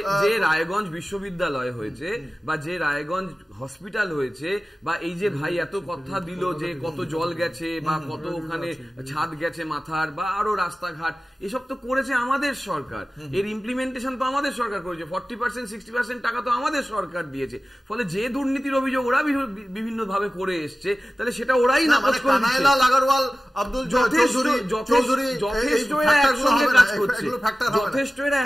যে রায়গঞ্জ বিশ্ববিদ্যালয় হয়েছে বা যে রায়গঞ্জ হসপিটাল হয়েছে, বা এই যে ভাই এত কথা দিল যে কত জল গেছে বা কত ওখানে ছাদ গেছে মাথার, বা আরো রাস্তাঘাট, এসব তো করেছে আমাদের সরকার, এর ইমপ্লিমেন্টেশন তো আমাদের সরকার করেছে, 40% 60% টাকা তো আমাদের সরকার দিয়েছে। ফলে যে দুর্নীতির অভিযোগ ওরা বিভিন্ন ভাবে করে এসছে, তাহলে সেটা ওরাই নাকচ করে দিচ্ছে। যথেষ্ট এরা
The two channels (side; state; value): both; normal; correlation 0.96